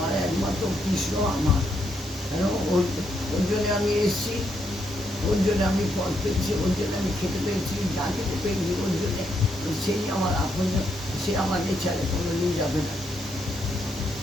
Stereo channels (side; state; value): both; normal; correlation 0.77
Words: একমাত্র কৃষ্ণ আমার, কেন ওর জন্যে আমি এসেছি, ওর জন্য আমি পথ পেয়েছি, ওর জন্য আমি খেতে পেয়েছি, যা খেতে পেয়েছি ওর জন্যে, সেই আমার আপন, সে আমাকে ছেড়ে কোনোদিন যাবে না।